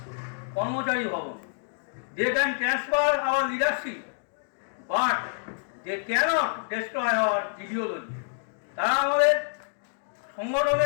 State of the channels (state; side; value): silent; right; digital silence